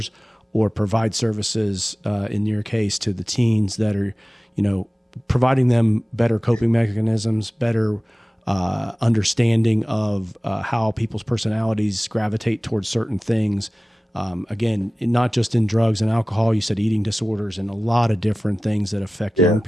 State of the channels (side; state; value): both; normal; correlation 0.97